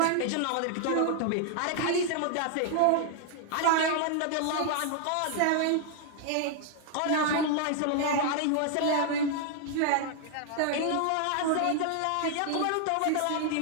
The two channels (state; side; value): different; both; correlation 0.00